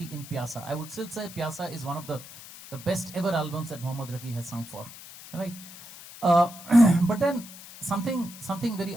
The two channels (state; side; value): noise; left; hiss, 16 dB below the sound